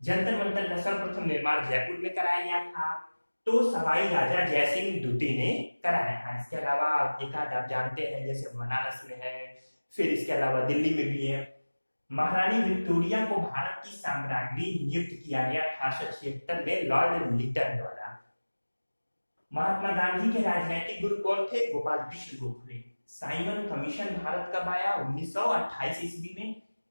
जंतर मंतर का सर्वप्रथम निर्माण जयपुर में कराया गया था, तो सवाई राजा जयसिंह द्वितीय ने कराया था। इसके अलावा एक आध आप जानते हैं जैसे बनारस में है, फिर इसके अलावा दिल्ली में भी है। महारानी विक्टोरिया को भारत की साम्राज्ञी नियुक्त किया गया 1876 में लॉर्ड लिटन द्वारा। महात्मा गांधी के राजनीतिक गुरु कौन थे? गोपाल कृष्ण गोखले। साइमन कमीशन भारत कब आया? 1928 ईस्वी में।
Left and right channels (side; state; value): both; inverted; correlation -1.00